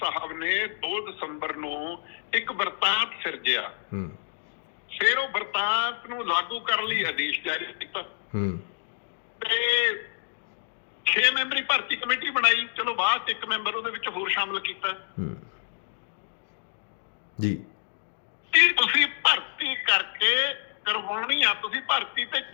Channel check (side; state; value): right; silent; digital silence